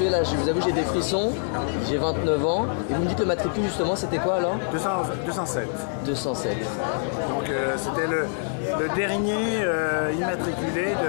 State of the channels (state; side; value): silent; right; digital silence